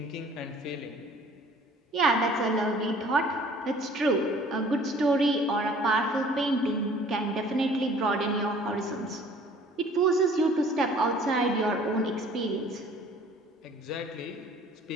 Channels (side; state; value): both; normal; correlation 0.52